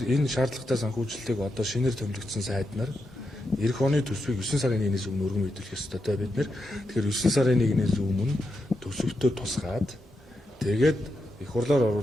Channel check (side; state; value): both; normal; correlation 0.85